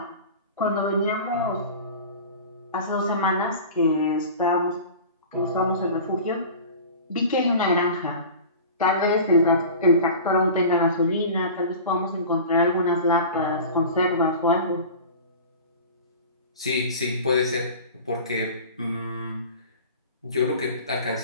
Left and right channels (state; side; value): inverted; both; correlation -0.37